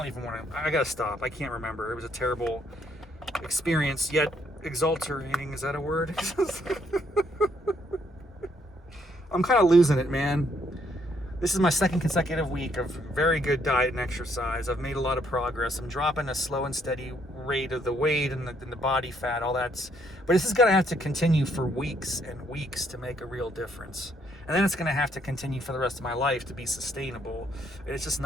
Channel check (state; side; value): normal; both; correlation 0.71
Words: even want to, I gotta stop. I can't remember. It was a terrible experience, yet exulterating. Is that a word? I'm kind of losing it, man. This is my second consecutive week of very good diet and exercise. I've made a lot of progress. I'm dropping a slow and steady rate of the weight and the body fat, all that's, but this is gonna have to continue for weeks and weeks to make a real difference. And then it's gonna have to continue for the rest of my life to be sustainable. And it's just